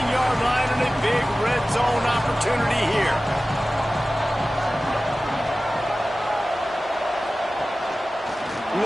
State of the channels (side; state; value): both; normal; correlation 0.96